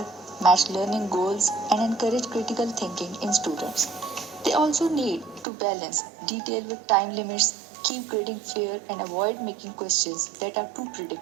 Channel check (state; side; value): drops out; left; at 5.5 s